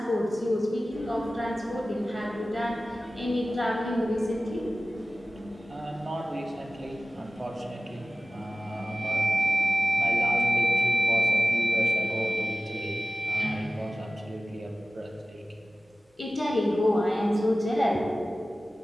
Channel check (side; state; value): both; normal; correlation 0.96